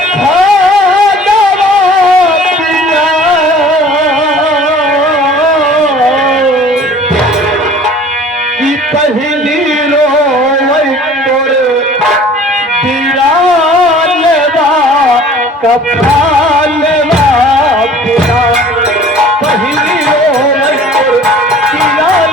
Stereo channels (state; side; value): normal; both; correlation 0.48